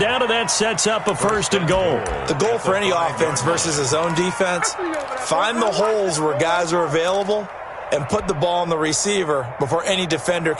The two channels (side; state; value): both; identical; correlation 1.00